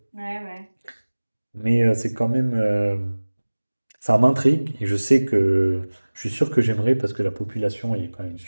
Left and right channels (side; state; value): both; inverted; correlation -1.00